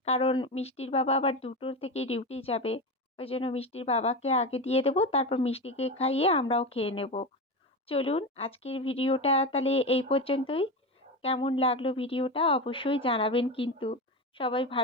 কারণ মিষ্টির বাবা আবার 2টোর থেকে ডিউটি যাবে, ওই জন্য মিষ্টির বাবাকে আগে দিয়ে দেবো, তারপর মিষ্টিকে খাইয়ে আমরাও খেয়ে নেব। চলুন আজকের ভিডিওটা তাহলে এই পর্যন্তই। কেমন লাগলো ভিডিওটা অবশ্যই জানাবেন কিন্তু। সবাই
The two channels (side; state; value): both; normal; correlation 0.21